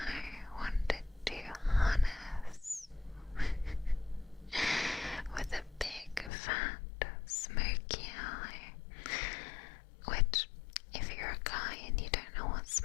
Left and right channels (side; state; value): right; drops out; at 6.3 s